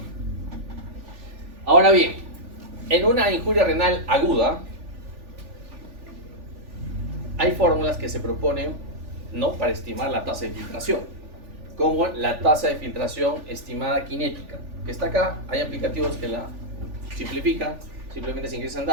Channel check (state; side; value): late; left; 3.4 ms